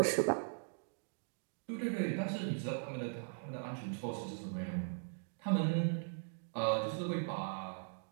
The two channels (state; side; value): silent; left; digital silence